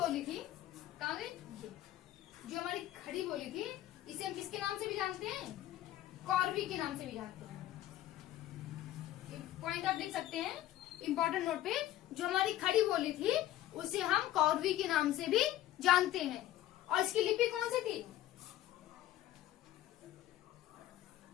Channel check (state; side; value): quieter; right; 13.8 dB